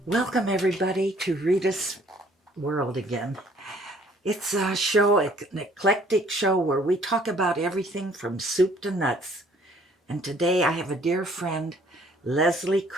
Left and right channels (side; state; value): both; normal; correlation 0.59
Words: Welcome, everybody, to Reita's World again. It's a show, an eclectic show where we talk about everything from soup to nuts. And today I have a dear friend, Leslee